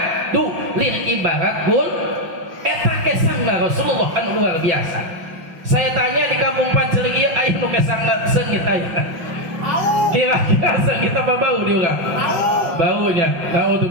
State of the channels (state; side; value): late; left; 5.5 ms